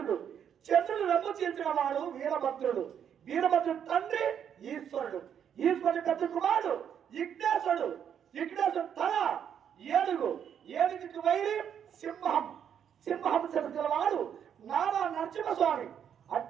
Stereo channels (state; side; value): quieter; left; 8.6 dB